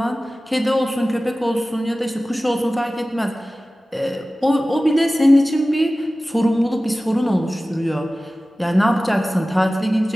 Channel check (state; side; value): normal; both; correlation 0.96